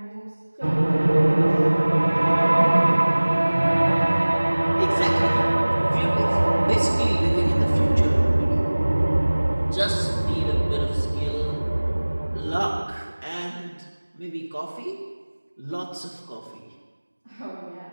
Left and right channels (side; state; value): both; inverted; correlation -1.00